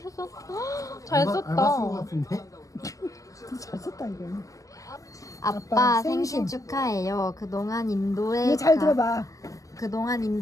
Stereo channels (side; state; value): right; late; 0.16 ms